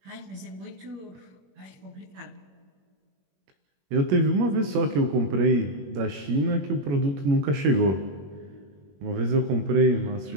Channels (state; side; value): late; left; 21 ms